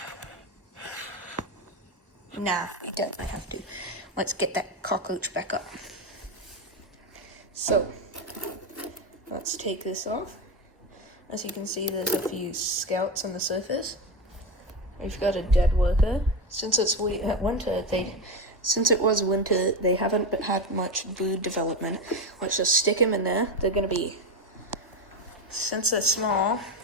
Nah, we definitely have to. Let's get that cockroach back up. So, let's take this off. As you can see, there's a few scouts on the surface. We've got a dead worker. Since it was winter, they haven't had much brood development. Let's just stick them in there. They're gonna be, since they're small,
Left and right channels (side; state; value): both; normal; correlation 0.16